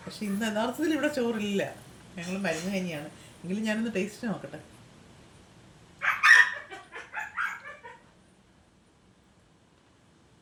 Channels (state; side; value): identical; both; correlation 1.00